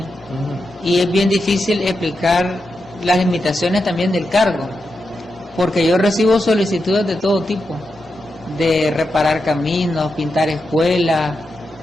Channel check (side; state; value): both; normal; correlation 0.87